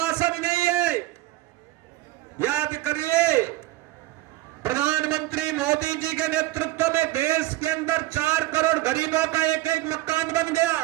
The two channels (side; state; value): left; quieter; 16.8 dB